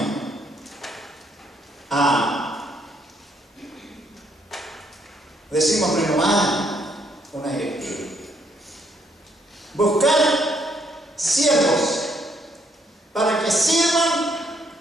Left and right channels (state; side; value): normal; both; correlation 0.70